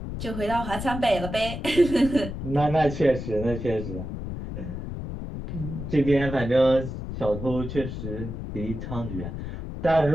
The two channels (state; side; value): noise; left; rumble, 7 dB below the sound